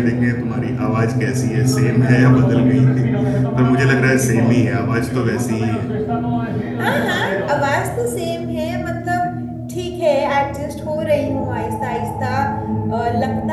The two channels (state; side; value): identical; both; correlation 1.00